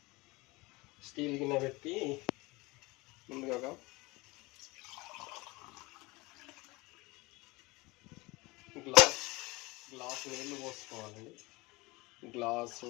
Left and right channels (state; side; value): quieter; right; 23.4 dB